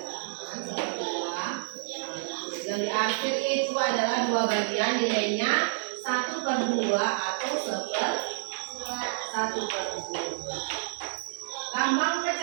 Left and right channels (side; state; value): left; silent; digital silence